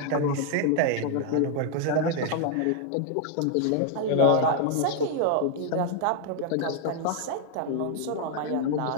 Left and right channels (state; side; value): different; both; correlation 0.00